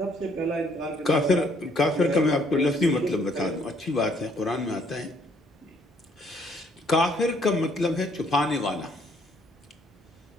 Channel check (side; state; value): both; normal; correlation 0.66